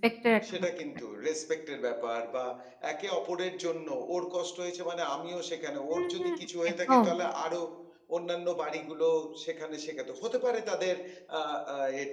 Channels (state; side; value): identical; both; correlation 1.00